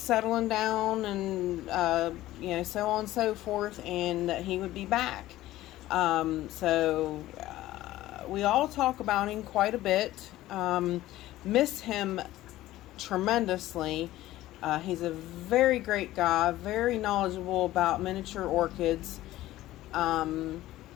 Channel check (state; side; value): quieter; right; 15.6 dB